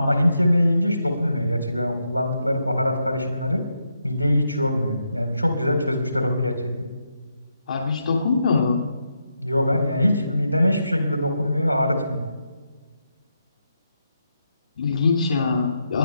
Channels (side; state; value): both; inverted; correlation -0.82